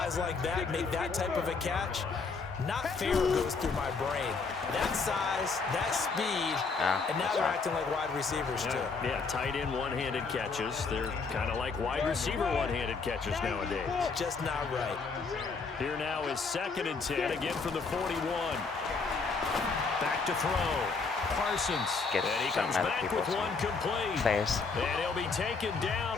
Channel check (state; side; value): quieter; right; 4.6 dB